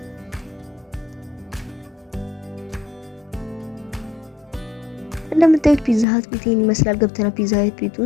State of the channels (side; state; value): right; drops out; at 6.1 s